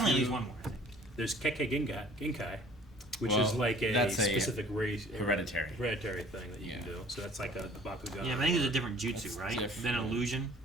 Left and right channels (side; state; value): both; normal; correlation 0.51